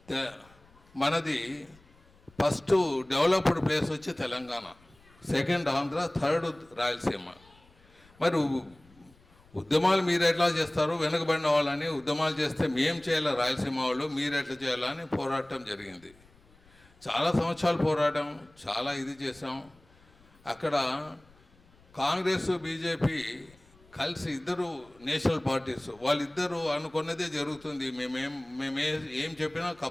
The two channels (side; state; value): left; noise; rumble, 28 dB below the sound